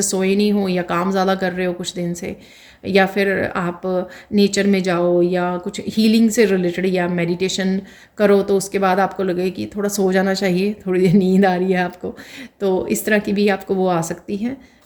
सोए नहीं हो, या काम ज़्यादा कर रहे हो कुछ दिन से, या फिर आप नेचर में जाओ, या कुछ हीलिंग से रिलेटेड या मेडिटेशन करो, तो उसके बाद आपको लगे कि थोड़ा सो जाना चाहिए, थोड़ी देर नींद आ रही है आपको। तो इस तरह की भी आपको वो आ सकती है।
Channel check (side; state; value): both; identical; correlation 1.00